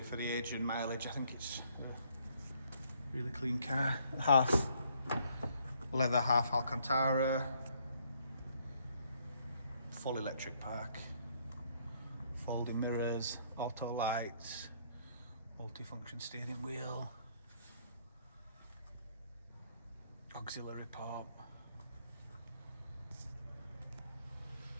for the age and mileage, I think it's a really clean car. Half leather, half Alcantara. Full electric park. Folding mirrors, auto lights, multifunction steering wheel, auxiliary pump.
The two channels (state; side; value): inverted; both; correlation -0.68